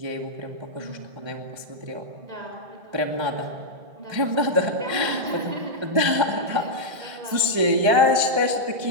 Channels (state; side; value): late; left; 1.3 ms